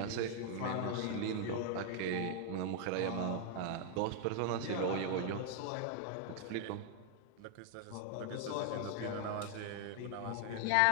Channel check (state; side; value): different; both; correlation 0.00